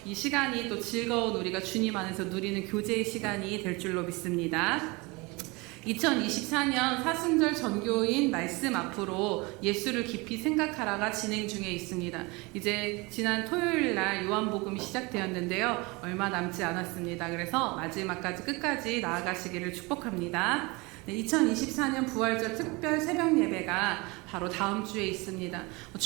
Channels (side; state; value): left; quieter; 25.6 dB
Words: 이 시간이 또 즐거운 우리가 주님 안에서 누리는 교제의 시간이 될 줄로 믿습니다. 2024년 사순절 전교인 말씀 앞으로 예수를 깊이 생각하라가 진행 중에 있습니다. 이제 지난 토요일 날 요한복음이 시작되었는데요. 얼마 남지 않았습니다. 그래서 마지막까지 끝까지 나아가시기를 축복합니다. 네, 2024년 부활절 특별 새벽 예배가 바로 다음 주에 있습니다.